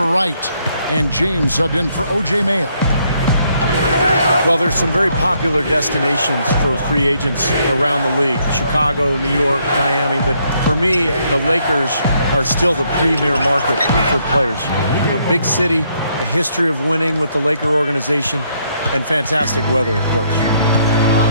Wright. And James subbed in for O.J. Mayo. Well, there's some very popular destinations for free agents around the league. Chicago, New York, Miami. But for me, the Lakers are still the premier market for players. You know, big city, a history of winning with the Laker organization, and fantastic weather, of course.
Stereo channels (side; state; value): both; inverted; correlation -0.72